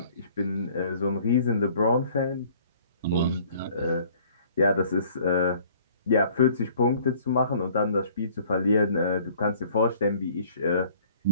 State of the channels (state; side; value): inverted; both; correlation -0.56